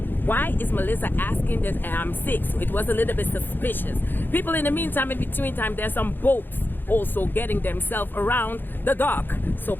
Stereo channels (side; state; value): right; late; 0.095 ms